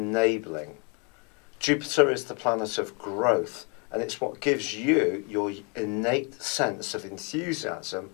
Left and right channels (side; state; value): right; quieter; 34.7 dB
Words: Jupiter is the planet of growth, and it's what gives you your innate sense of enthusiasm